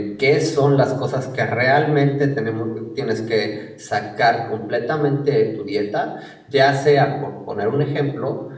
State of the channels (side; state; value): both; identical; correlation 1.00